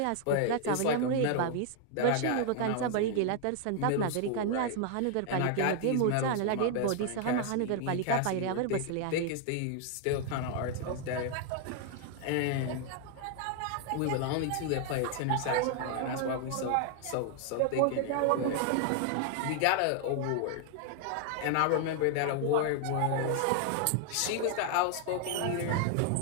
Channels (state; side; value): different; both; correlation 0.00